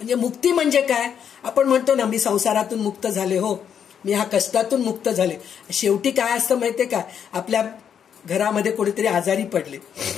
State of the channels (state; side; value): quieter; right; 8.2 dB